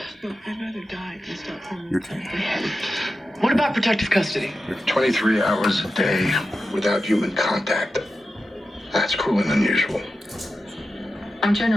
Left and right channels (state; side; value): normal; both; correlation 0.91